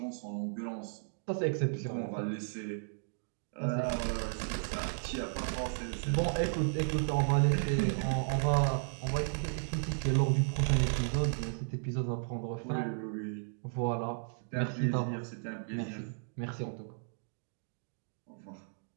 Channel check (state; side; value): silent; left; digital silence